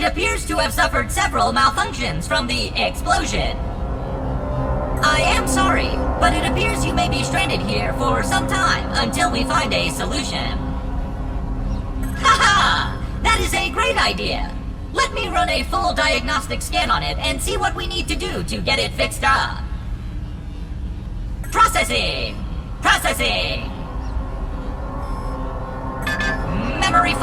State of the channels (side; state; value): both; identical; correlation 1.00